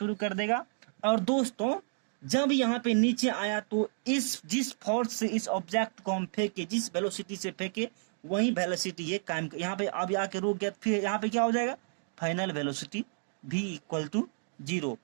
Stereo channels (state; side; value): silent; left; digital silence